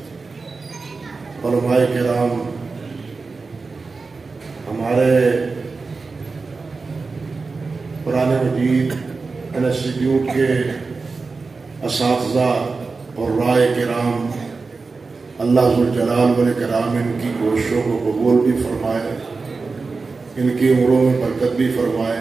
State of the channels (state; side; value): quieter; left; 4.2 dB